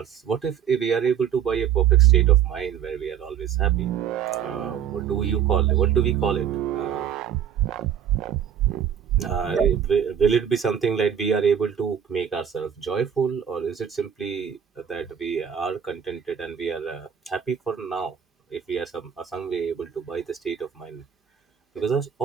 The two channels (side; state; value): left; quieter; 8.6 dB